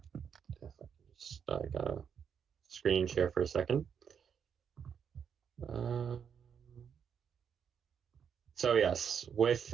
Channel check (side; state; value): left; quieter; 7.4 dB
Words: gotta screen share for a second. So yes, with